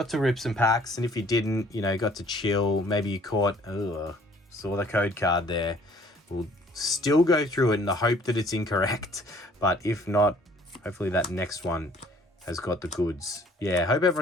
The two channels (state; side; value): normal; both; correlation 0.57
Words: to rip some packs, and if you didn't, you know, got to chill. Maybe you caught... saw the code card there. We'll still go through it in the hope that it's incorrect, but if not, hopefully that next one has got the goods. Yeah, hope